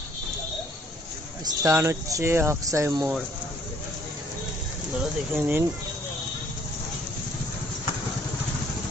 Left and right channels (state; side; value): normal; both; correlation 0.62